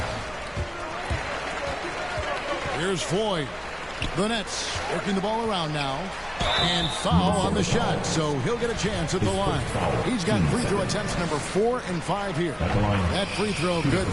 Here's Floyd. The Nets working the ball around now. And foul on the shot, so he'll get a chance at the line. He's got free throw attempts number 4 and 5 here. That free throw good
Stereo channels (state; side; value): identical; both; correlation 1.00